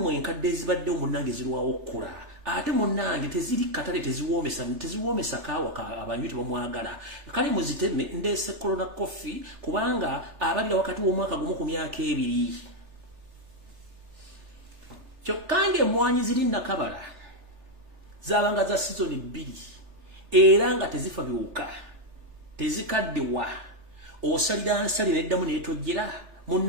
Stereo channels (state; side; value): late; left; 3.4 ms